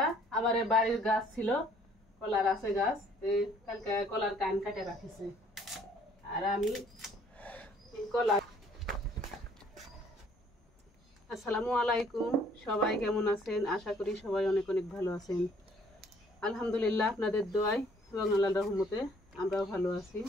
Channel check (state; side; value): normal; both; correlation 0.60